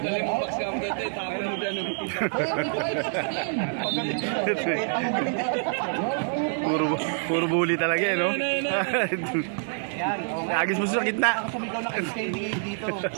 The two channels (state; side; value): silent; left; digital silence